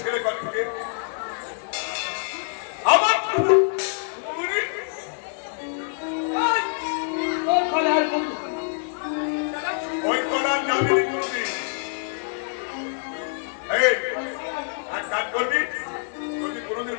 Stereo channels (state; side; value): silent; right; digital silence